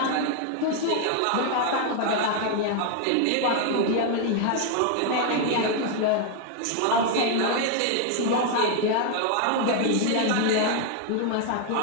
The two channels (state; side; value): different; both; correlation 0.01